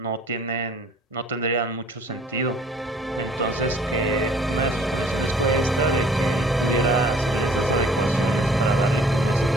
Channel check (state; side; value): normal; both; correlation 0.55